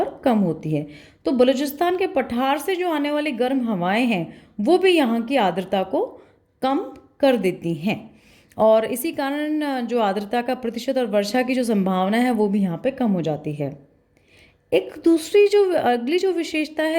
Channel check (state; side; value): identical; both; correlation 1.00